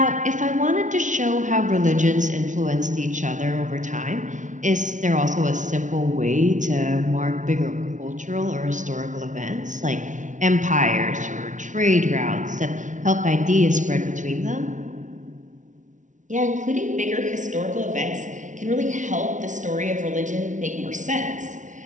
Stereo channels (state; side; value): late; left; 0.37 ms